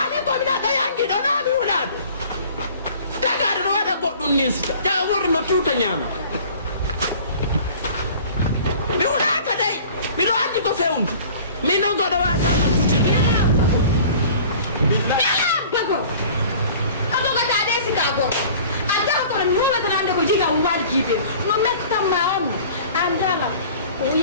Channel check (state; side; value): inverted; both; correlation -0.47